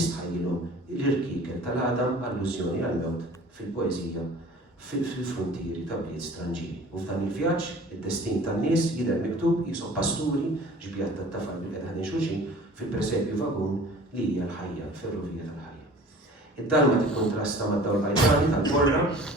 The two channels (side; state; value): both; normal; correlation 0.45